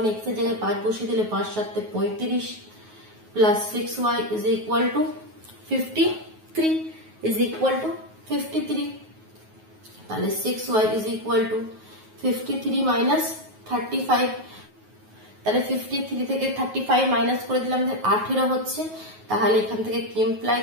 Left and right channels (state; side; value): late; left; 9.4 ms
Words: এক্স এর জায়গায় 5 বসিয়ে দিলে 5 7 35 plus 6y is equal two 53 is equal two 53। তাহলে 6y is equal two 53 minus 35, তাহলে 53 থেকে 35 মাইনাস করে দিলাম 18 হচ্ছে। তাহলে এখান থেকে কি ইমপ্লাই